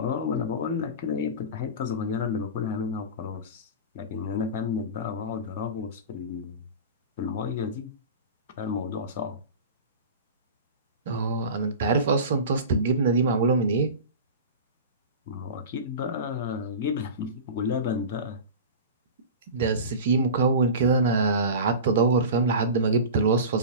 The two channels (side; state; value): both; inverted; correlation -0.31